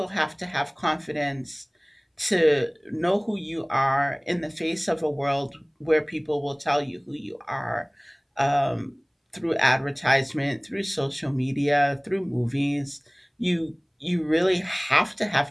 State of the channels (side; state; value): both; identical; correlation 1.00